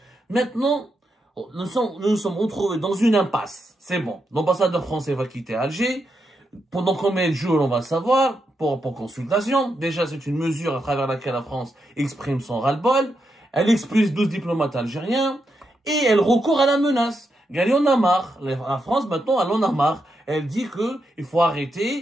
Maintenant, nous nous sommes retrouvés dans une impasse. C'est bon. L'ambassadeur français va quitter Alger. Pendant combien de jours, on va savoir, pour consultation. Déjà, c'est une mesure à travers laquelle la France exprime son ras-le-bol. Elle expulse 12 diplomates algériens et elle recourt à la menace. Elle en a marre. La France, maintenant, elle en a marre. Elle dit que il faut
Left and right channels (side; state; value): both; normal; correlation 0.84